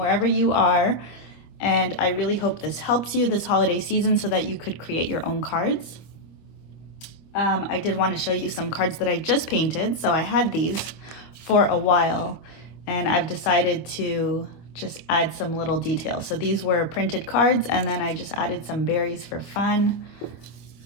you are. And I really hope this helps you this holiday season so that you could create your own cards. I did want to show you some cards that I just painted. So I had these for a while and I've decided to just add some little details. So these were printed cards and then I just added some berries for fun.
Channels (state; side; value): late; right; 25 ms